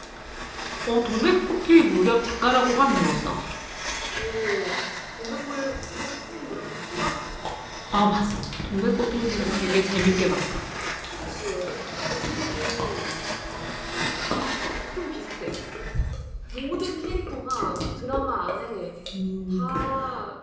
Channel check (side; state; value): both; identical; correlation 1.00